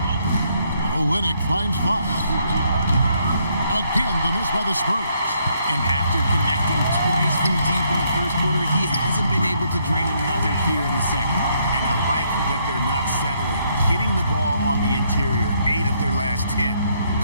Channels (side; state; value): both; inverted; correlation -0.72